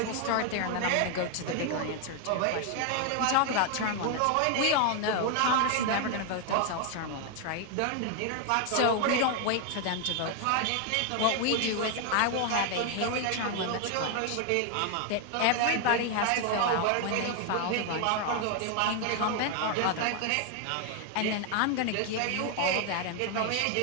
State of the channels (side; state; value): both; different; correlation 0.00